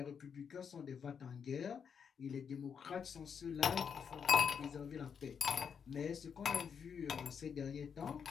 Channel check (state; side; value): quieter; right; 6.9 dB